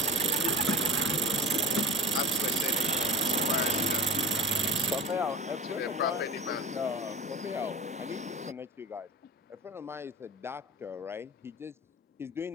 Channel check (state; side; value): normal; both; correlation 0.32